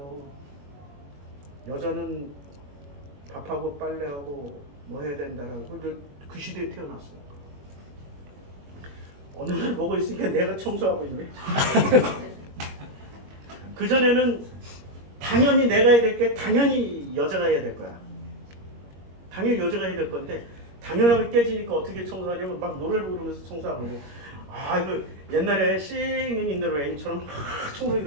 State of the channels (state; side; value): late; left; 21 ms